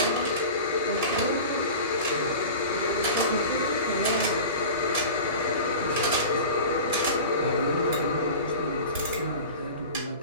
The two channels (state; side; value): inverted; both; correlation -0.35